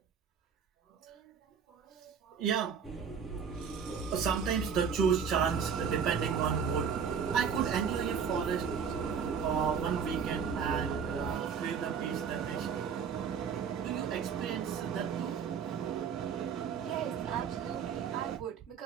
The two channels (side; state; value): left; quieter; 6.8 dB